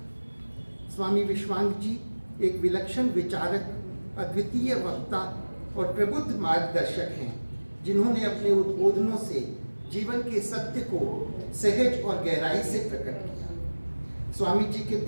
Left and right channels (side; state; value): both; inverted; correlation -1.00